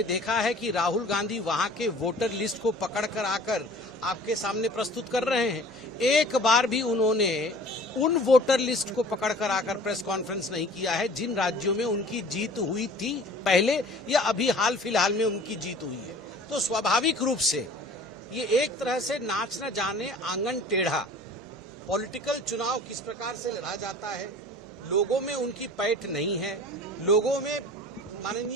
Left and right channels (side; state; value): both; normal; correlation 0.46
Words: देखा है कि राहुल गांधी वहां के वोटर लिस्ट को पकड़कर आकर आपके सामने प्रस्तुत कर रहे हैं? एक बार भी उन्होंने उन वोटर लिस्ट को पकड़कर आकर प्रेस कॉन्फ्रेंस नहीं किया है जिन राज्यों में उनकी जीत हुई थी पहले या अभी हाल फिलहाल में उनकी जीत हुई है। तो स्वाभाविक रूप से ये एक तरह से नाच न जाने आंगन टेढ़ा पॉलिटिकल चुनाव किस प्रकार से लड़ा जाता है, लोगों में उनकी पैठ नहीं है, लोगों में